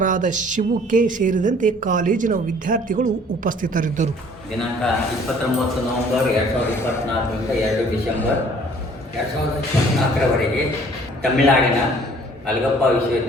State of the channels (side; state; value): both; normal; correlation 0.55